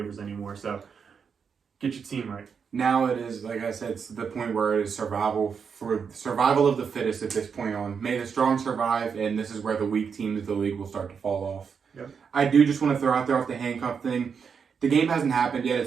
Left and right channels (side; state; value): left; quieter; 6.4 dB